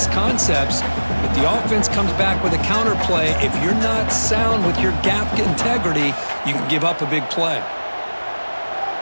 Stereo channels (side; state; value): both; inverted; correlation -1.00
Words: concepts, but the offense comes back with a counter play. If you're not sound with your gap integrity, you can give up a big play.